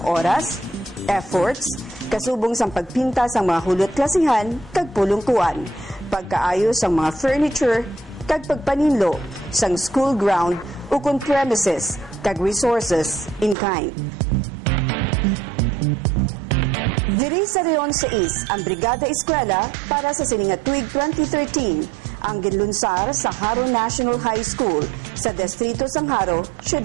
oras, efforts, kasubong sang pagpinta sang mga hulot klasihan kag pulungkuan, pagkaayo sang mga furniture kag pagpaninlo sang school ground ukon premises kag resources in kind. Diri sa Reon 6 ang Brigada Eskwela para sa sininga tuig 2013 ang ginlunsar sa Haro National High School sa Distrito sang Haro,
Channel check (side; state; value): left; drops out; at 13.6 s